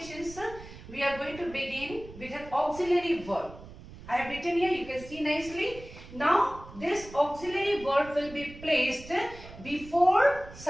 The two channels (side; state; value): right; noise; rumble, 16 dB below the sound